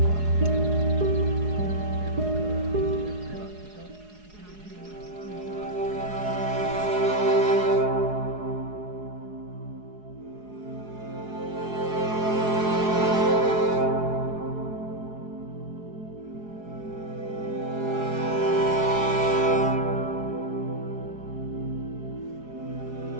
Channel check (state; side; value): late; left; 4.8 ms